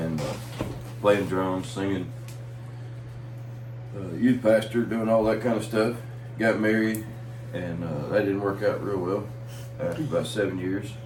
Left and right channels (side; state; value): both; identical; correlation 1.00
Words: playing drums, singing, youth pastor, doing all that kind of stuff. Got married, and that didn't work out real well after about 7 years,